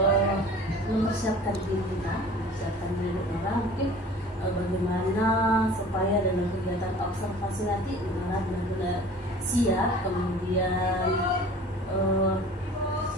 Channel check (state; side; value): normal; both; correlation 0.45